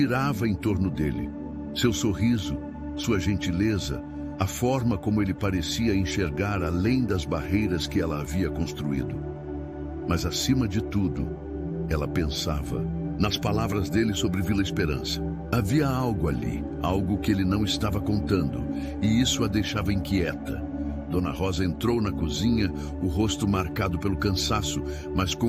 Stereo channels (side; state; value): both; identical; correlation 1.00